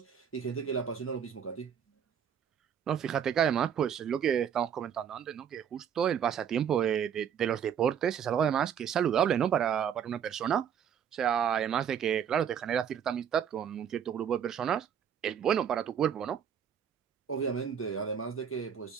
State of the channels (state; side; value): quieter; left; 8.4 dB